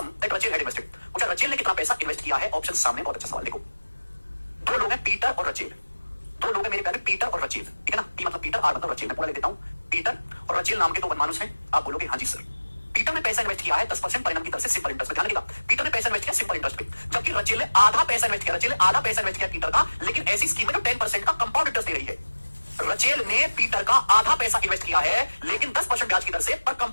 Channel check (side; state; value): both; inverted; correlation -1.00